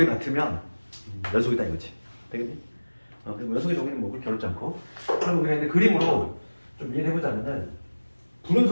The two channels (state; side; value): inverted; both; correlation -1.00